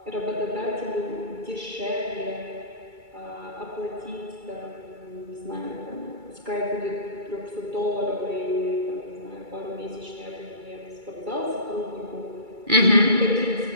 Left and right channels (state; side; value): late; left; 2.3 ms